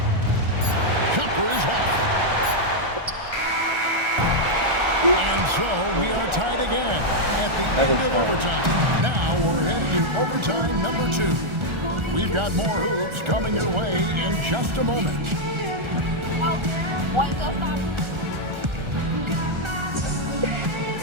Jumper is off. And so we are tied again at the end of overtime. Now we're headed to overtime number 2. We've got more hoops coming your way in just a moment.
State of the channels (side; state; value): left; late; 1.4 ms